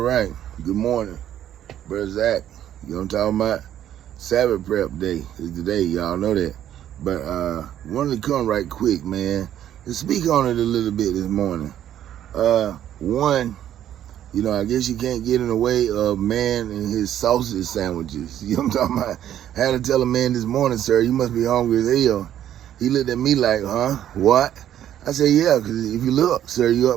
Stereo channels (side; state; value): left; quieter; 11.1 dB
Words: Good morning, Brother Zach. You know what I'm talking about? Sabbath prep day is today, y'all know that. But wanted to come right quick, man, to speak on it a little bit this morning. One, I guess you can't get in the way of man and his sausage sandwiches. You know what I'm talking about? I had to tell a man this morning, sir, you must be hungry as hell. He looked at me like, huh? What? I said, yeah, because if you look, sir, you